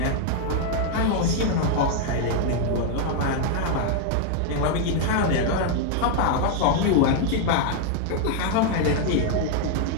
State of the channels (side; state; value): both; different; correlation 0.00